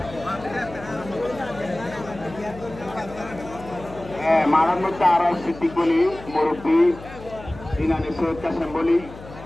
মারার মধ্যে আরো সিদ্দিক বলি মুরব্বী ইনানি সৈয়দ কাসেম বলি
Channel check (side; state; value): left; noise; hum, 16 dB below the sound